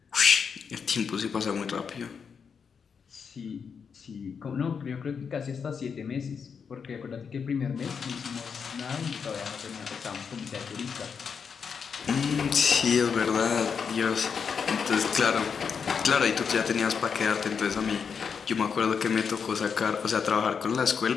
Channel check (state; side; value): quieter; right; 6.3 dB